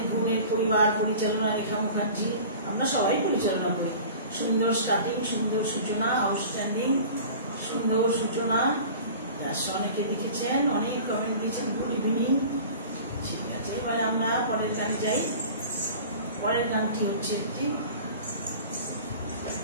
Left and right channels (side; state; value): both; inverted; correlation -0.41